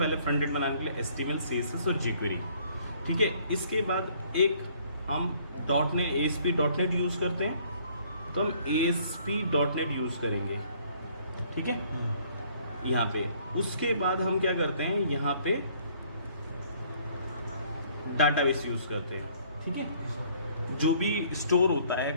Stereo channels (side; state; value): both; inverted; correlation -0.60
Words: फ्रंट एंड बनाने के लिए HTML, CSS और jQuery, ठीक है। इसके बाद एक हम ASP.NET यूज़ करते हैं, तो हम ASP.NET यूज़ करेंगे, ठीक है, यहाँ पे। उसके बाद हम क्या करते हैं, यहाँ पे डाटाबेस यूज़ करते हैं, ठीक है। जो भी स्टोर होता है,